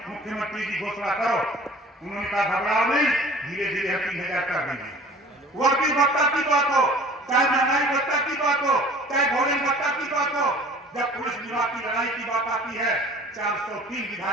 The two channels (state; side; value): normal; both; correlation 0.47